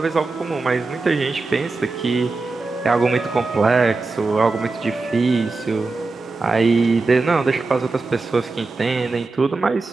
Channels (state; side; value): quieter; left; 3.7 dB